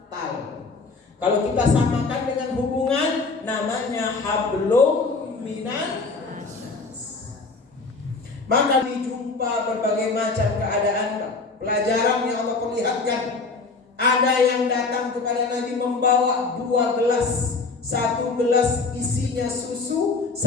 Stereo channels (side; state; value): right; quieter; 4.1 dB